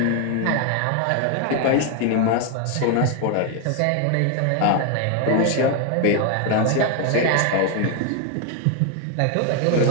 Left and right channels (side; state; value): both; different; correlation 0.01